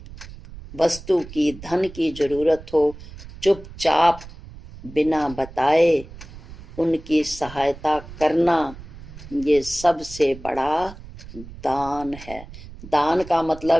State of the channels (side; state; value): right; noise; rumble, 16 dB below the sound